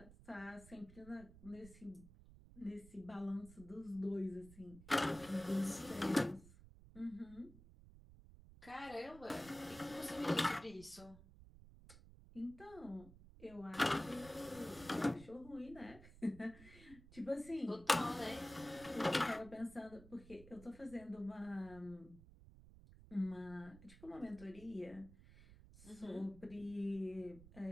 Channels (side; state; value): right; noise; rumble, 18 dB below the sound